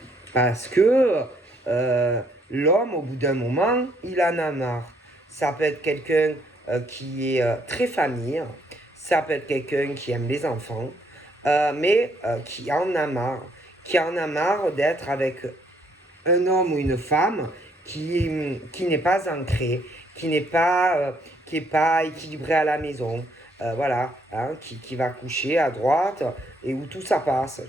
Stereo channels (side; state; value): both; normal; correlation 0.69